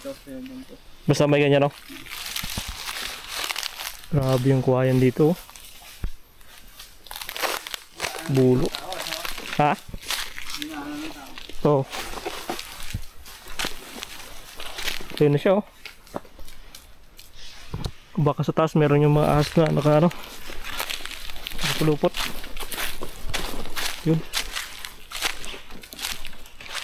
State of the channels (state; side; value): identical; both; correlation 1.00